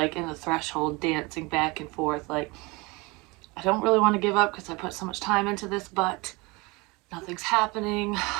in the threshold, dancing back and forth, like, I don't really want to give up because I put so much time into this, but nothing's happening.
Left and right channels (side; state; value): left; quieter; 25.4 dB